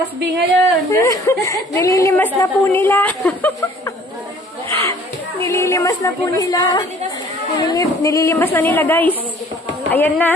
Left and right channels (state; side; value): normal; both; correlation 0.54